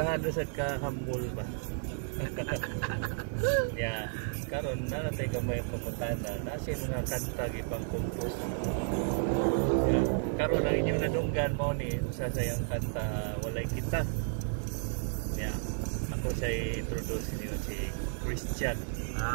na sad ka humble ba. Ya, karon na natay gamay pamutana, nasi mga kanta gipang compose. Ya, karon ang inyong nadunggan mo ni usa sa yang kanta Walay Kita. Ya, ako siya introduce niyo si Christian.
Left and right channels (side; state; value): left; silent; digital silence